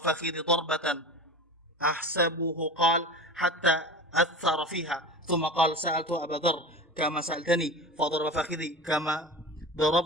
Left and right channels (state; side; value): normal; both; correlation 0.31